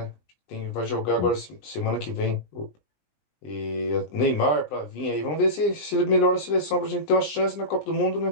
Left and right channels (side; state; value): right; late; 20 ms